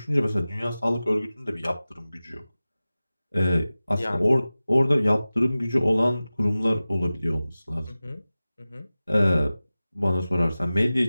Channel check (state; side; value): inverted; both; correlation -0.97